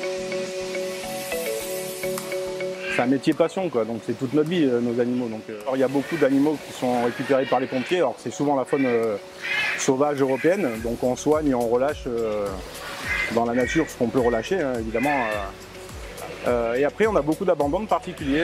C'est un métier passion, quoi. Donc c'est toute notre vie, nos animaux. Donc, alors, il y a beaucoup d'animaux qui sont récupérés par les pompiers. Alors c'est souvent la faune sauvage européenne. Donc on soigne et on relâche dans la nature ce qu'on peut relâcher, hein, évidemment. Et après, on a beaucoup d'abandons de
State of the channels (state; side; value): identical; both; correlation 1.00